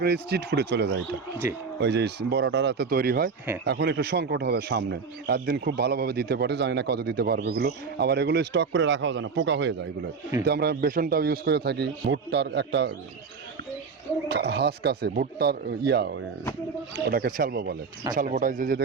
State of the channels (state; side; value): quieter; left; 5.3 dB